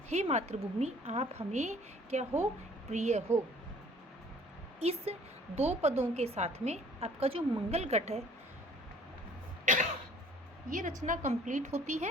हे मातृभूमि, आप हमें क्या हो, प्रिय हो। इस 2 पदों के साथ में आपका जो मंगल घट है, ये रचना कंप्लीट होती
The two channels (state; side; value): normal; both; correlation 0.54